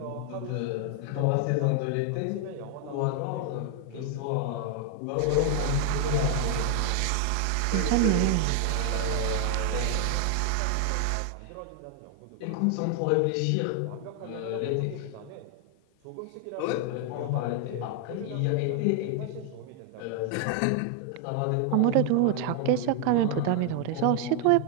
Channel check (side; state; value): both; different; correlation 0.00